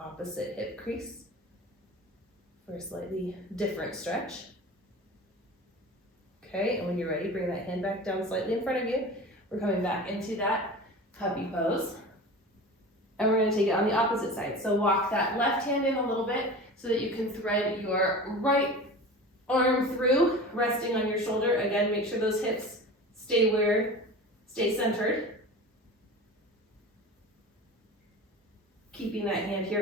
hip crease for a slightly different stretch. Okay, and when you're ready, bring that hand back down slightly in front of you. We're coming back into that puppy pose. And we're going to take it on the opposite side. So walk that left hand in a little bit so that you can thread your right arm through, resting on your shoulder. Again, make sure those hips stay centered. Keeping that hand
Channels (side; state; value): both; normal; correlation 0.34